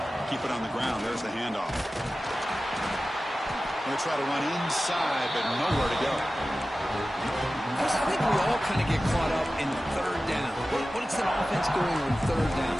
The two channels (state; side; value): normal; both; correlation 0.95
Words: Keep it on the ground. There's the handoff. Going to try to run inside, but nowhere to go. I think we all kind of get caught up in third down. What is an offense doing on third down?